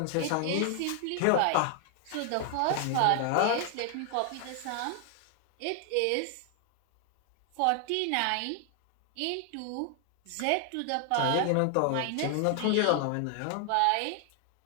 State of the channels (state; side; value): different; both; correlation 0.00